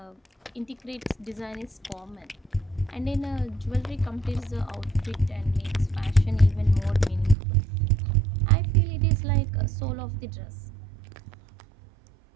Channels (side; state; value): left; drops out; at 7.4 s